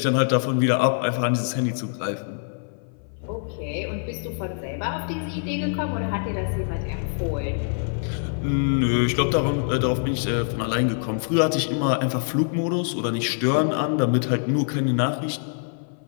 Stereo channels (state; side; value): silent; right; 58 dB below the other